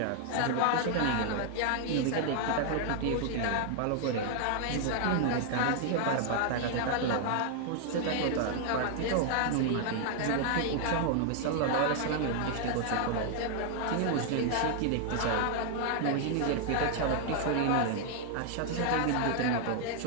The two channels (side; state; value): both; different; correlation 0.00